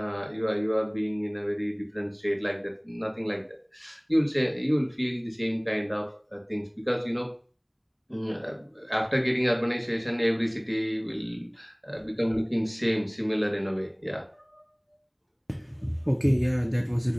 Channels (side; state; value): both; identical; correlation 1.00